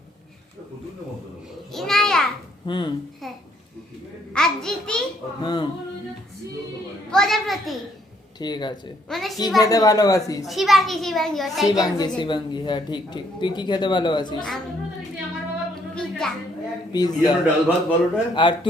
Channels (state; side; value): normal; both; correlation 0.69